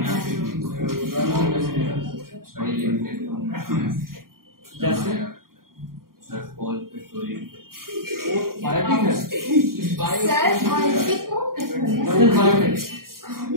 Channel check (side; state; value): left; late; 0.92 ms